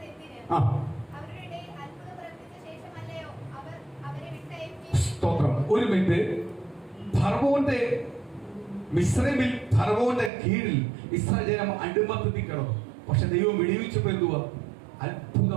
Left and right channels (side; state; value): left; drops out; at 10.3 s